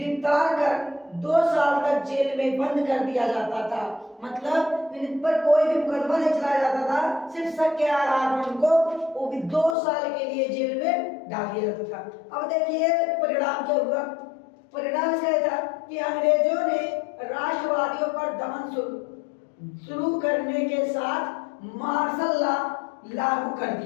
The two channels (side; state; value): right; drops out; at 9.8 s